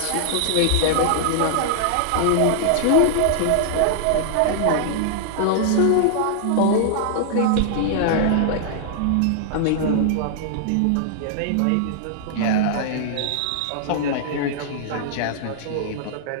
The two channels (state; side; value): different; both; correlation -0.01